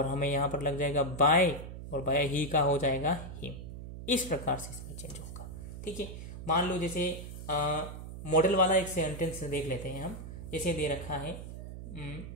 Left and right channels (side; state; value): right; noise; hum, 10 dB below the sound